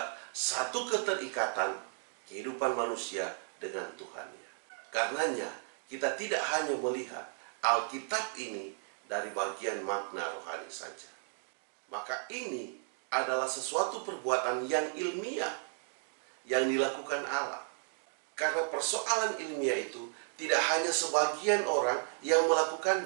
satu keterikatan kehidupan manusia dengan Tuhannya. Karenanya, kita tidak hanya melihat Alkitab ini dari bagian makna rohani saja. Maka ini adalah sesuatu perbuatan yang ilmiah yang dilakukan Allah. Karena persoalan ilmiah itu tidak hanya sebagian orang yang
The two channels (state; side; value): silent; left; 55 dB below the other